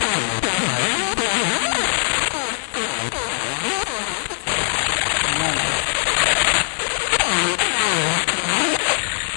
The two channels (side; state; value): right; silent; digital silence